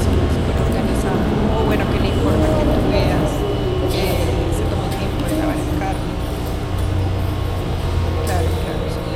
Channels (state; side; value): identical; both; correlation 1.00